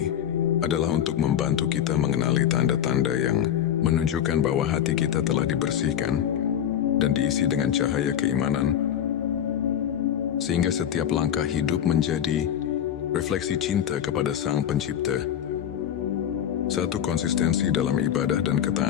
adalah untuk membantu kita mengenali tanda-tanda yang menunjukkan bahwa hati kita telah dibersihkan dan diisi dengan cahaya keimanan, sehingga setiap langkah hidup menjadi refleksi cinta kepada Sang Pencipta. 1. Konsistensi dalam ibadah dan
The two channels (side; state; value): right; quieter; 9.8 dB